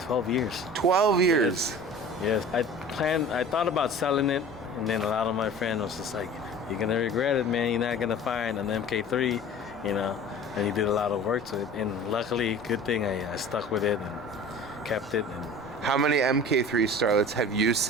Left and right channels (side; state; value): both; normal; correlation 0.41